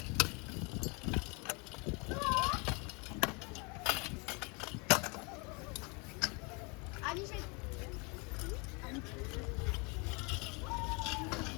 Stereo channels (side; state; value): right; quieter; 30.4 dB